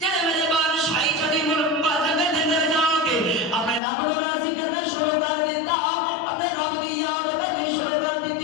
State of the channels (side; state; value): right; drops out; at 3.8 s